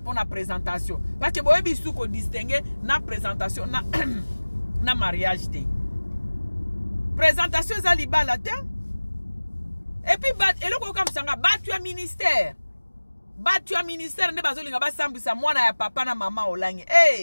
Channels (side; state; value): both; inverted; correlation -1.00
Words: présentation parce que boyebi su ko distinguer na présentation na mariage te présentation za libala te et puis eloko okamisanga batu ya ministère nde bazolinga basambwisa mwana ya papa na mama olangi